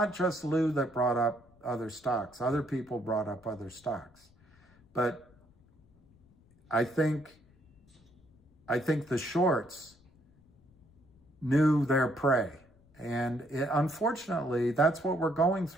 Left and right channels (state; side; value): noise; left; rumble, 30 dB below the sound